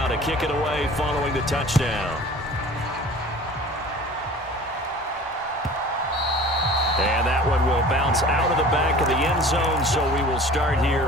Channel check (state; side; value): normal; both; correlation 0.43